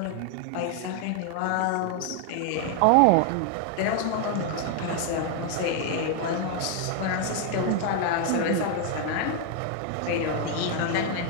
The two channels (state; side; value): different; both; correlation 0.00